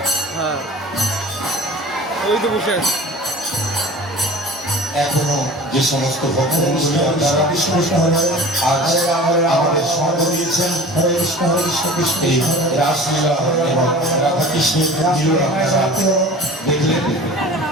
হ্যাঁ ওই তো বসে আছে এখনো যে সমস্ত ভক্তবন্ধুরা আপনারা আজ আমাদের সঙ্গ দিয়েছেন এই রাসলীলা এবং রাধা কৃষ্ণের মিলন আপনারা দেখলেন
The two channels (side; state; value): both; normal; correlation 0.40